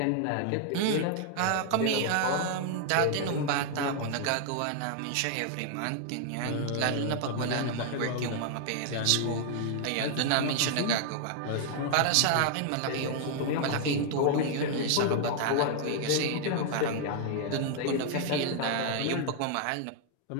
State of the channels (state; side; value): different; both; correlation 0.00